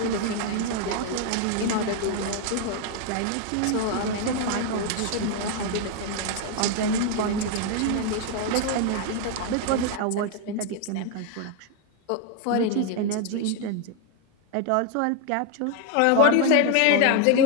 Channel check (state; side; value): different; both; correlation 0.01